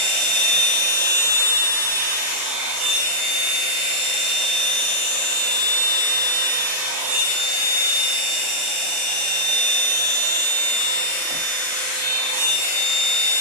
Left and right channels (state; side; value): late; left; 39 ms